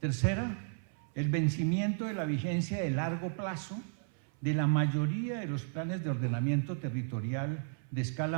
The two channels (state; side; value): silent; left; 55 dB below the other